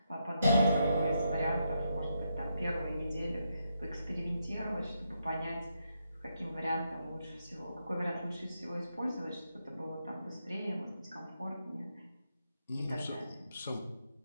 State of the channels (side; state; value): both; inverted; correlation -0.81